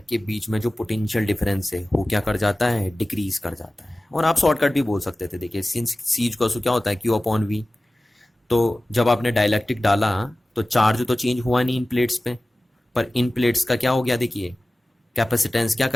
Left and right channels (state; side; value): normal; both; correlation 0.97